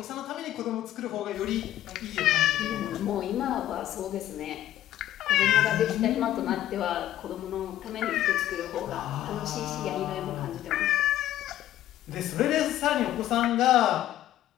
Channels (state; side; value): quieter; right; 13.1 dB